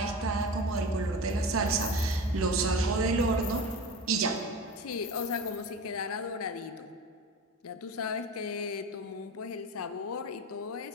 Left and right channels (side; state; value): both; normal; correlation 0.30